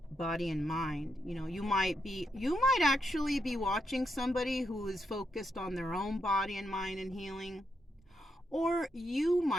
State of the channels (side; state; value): both; normal; correlation 0.81